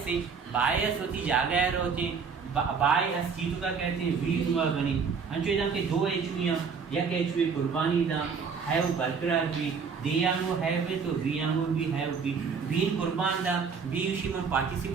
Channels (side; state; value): left; quieter; 5.7 dB